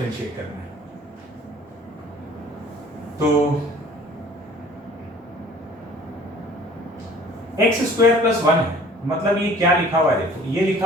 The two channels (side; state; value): both; normal; correlation 0.51